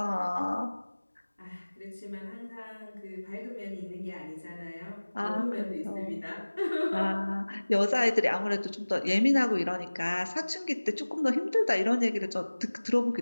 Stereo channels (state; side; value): inverted; both; correlation -1.00